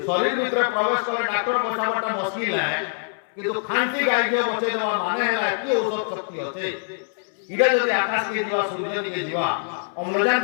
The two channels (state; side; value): silent; right; 63 dB below the other